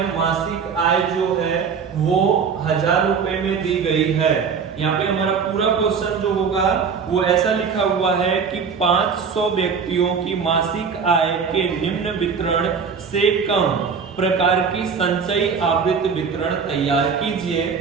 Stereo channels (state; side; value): quieter; left; 6.0 dB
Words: मासिक आय जो है वो 1000 रुपए में दी गई है। यहाँ पे हमारा पूरा क्वेश्चन जो होगा वो ऐसा लिखा हुआ है कि 500 व्यक्तियों की मासिक आय के निम्न वितरण से कम प्रकार की संचयी आवृत्ति वितरण तैयार कीजिए